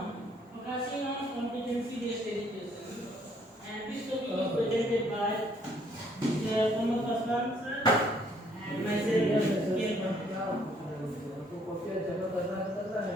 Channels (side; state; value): both; normal; correlation 0.65